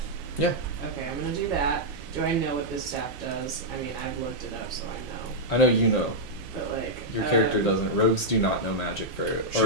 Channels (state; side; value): normal; both; correlation -0.06